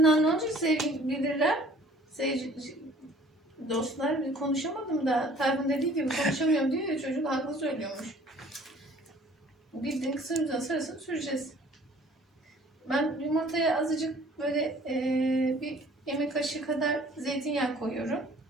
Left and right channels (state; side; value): normal; both; correlation 0.53